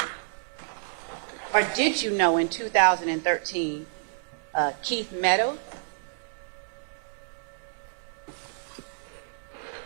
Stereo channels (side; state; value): left; silent; digital silence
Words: or did you know in 2013, Keith Meadows?